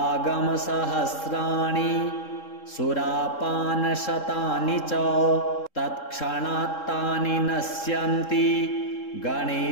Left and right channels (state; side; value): late; right; 3.7 ms